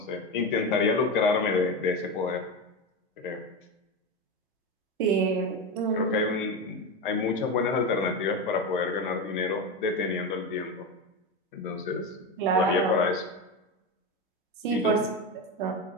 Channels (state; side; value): normal; both; correlation 0.18